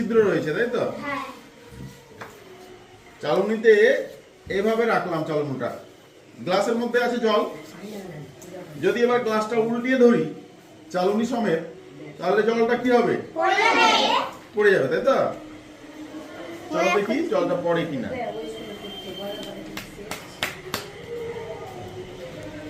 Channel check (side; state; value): both; identical; correlation 1.00